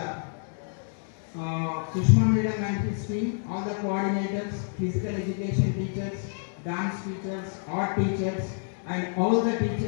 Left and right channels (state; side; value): silent; right; 59 dB below the other